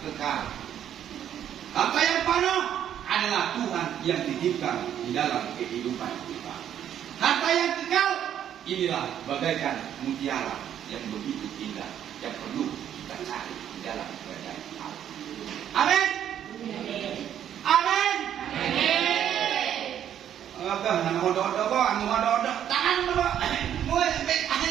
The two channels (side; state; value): left; quieter; 10.1 dB